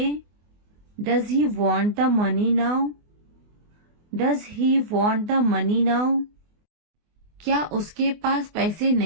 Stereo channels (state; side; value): late; left; 24 ms